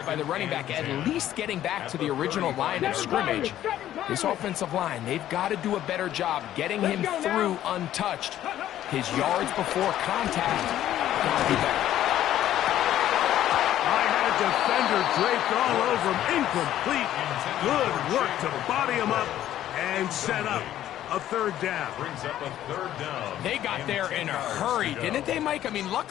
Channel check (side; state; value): right; quieter; 12.3 dB